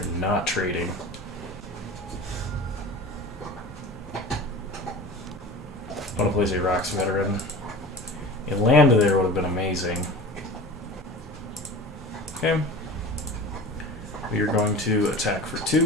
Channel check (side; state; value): both; normal; correlation 0.36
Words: not trading. Opponent plays a Rocks Veteran. A land there would have been amazing. Okay. We are going to attack for